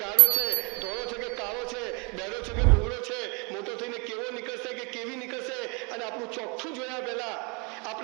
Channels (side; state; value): left; quieter; 31.7 dB